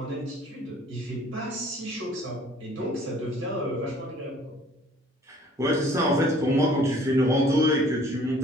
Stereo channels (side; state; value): both; normal; correlation 0.55